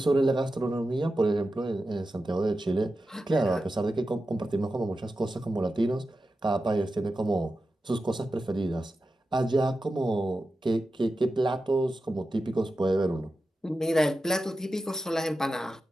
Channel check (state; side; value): normal; both; correlation 0.92